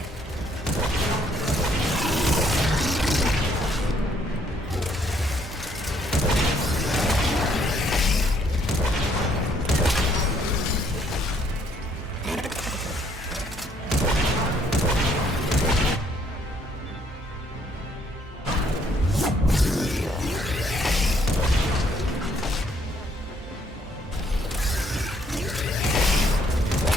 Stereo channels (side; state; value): both; normal; correlation 0.67